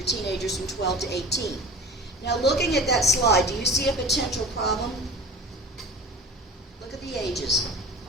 teenagers from 12 to 18. Now, looking at that slide, do you see a potential problem? Look at the ages.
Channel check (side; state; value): both; normal; correlation 0.37